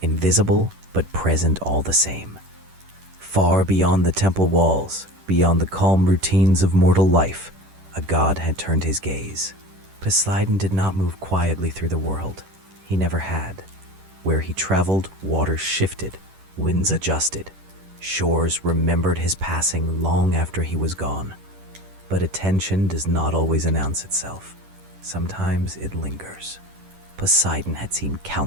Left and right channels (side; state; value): left; late; 10 ms